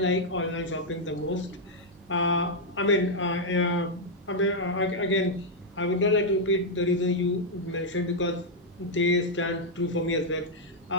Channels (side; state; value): both; normal; correlation -0.03